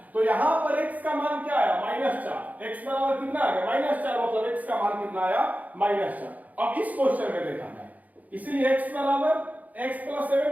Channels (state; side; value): late; left; 0.077 ms